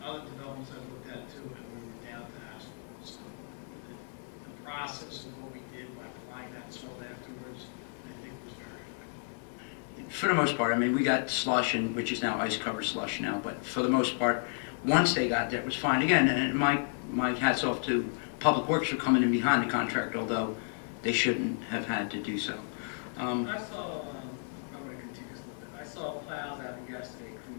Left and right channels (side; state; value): right; silent; 56 dB below the other